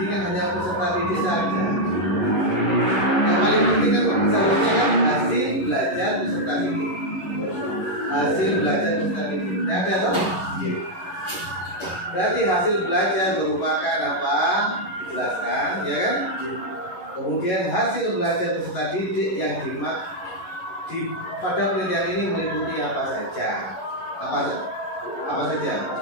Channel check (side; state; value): right; late; 11 ms